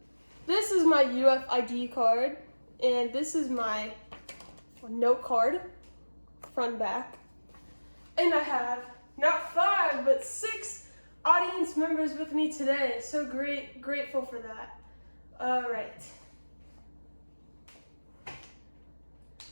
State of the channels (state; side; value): inverted; both; correlation -1.00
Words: this is my UFID card, and this is my note card, front and back. And I have not 5, but 6 audience members with me today. So grateful for that. Alright.